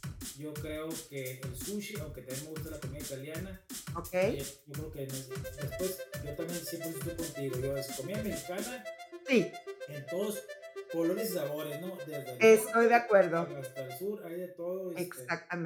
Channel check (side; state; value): both; identical; correlation 1.00